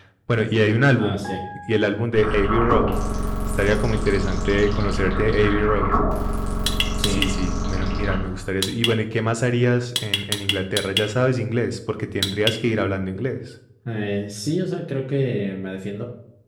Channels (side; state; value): both; identical; correlation 1.00